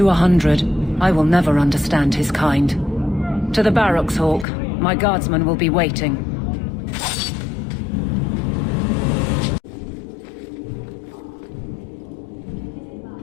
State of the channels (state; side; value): drops out; right; at 4.5 s